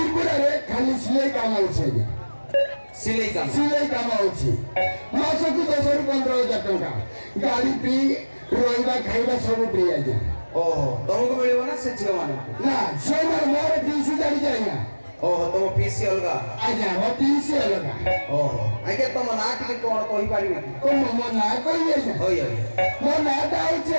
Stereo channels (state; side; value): inverted; both; correlation -1.00